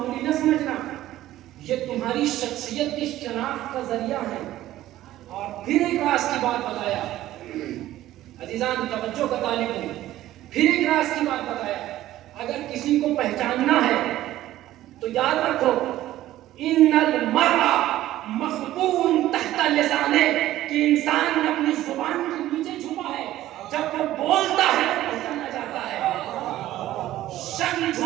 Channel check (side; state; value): left; quieter; 14.4 dB